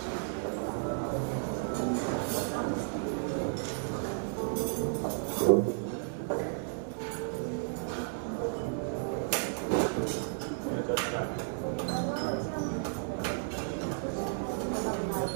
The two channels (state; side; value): silent; left; digital silence